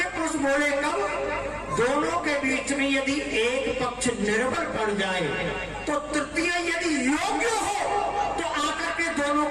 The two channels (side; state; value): both; identical; correlation 1.00